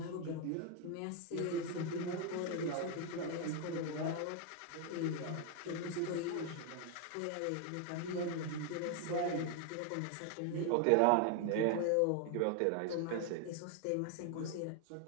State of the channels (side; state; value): both; different; correlation 0.00